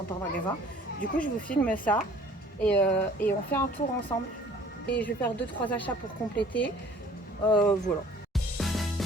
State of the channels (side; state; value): both; normal; correlation 0.52